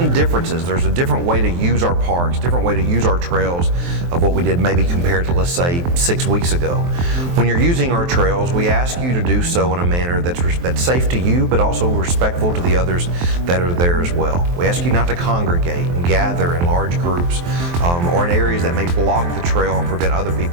differences. There's a different way to use our parks, different way to use our trails of what we did maybe compared to, let's say, 6 weeks ago. When you're using our trails, we ask you to do so in a manner that's safe to you, but also respectful to the others that are there as well. We ask you not to congregate and gather in large groups or in areas that may block the trail and prevent other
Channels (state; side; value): late; left; 23 ms